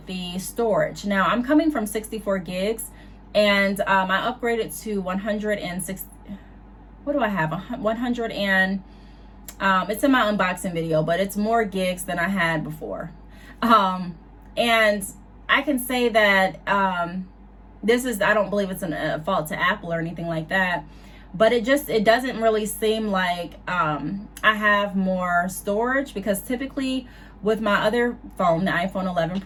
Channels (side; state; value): both; identical; correlation 1.00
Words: the storage. Now I'm coming from 64 gigs and I upgraded to 106. What do I have? 100 and it's in my unboxing video, but it's more gigs than I had before. And I can say that this is, I don't believe it's a fault to Apple or anything like that, but it doesn't really seem like I have more storage, because typically with my other phone, the iPhone 11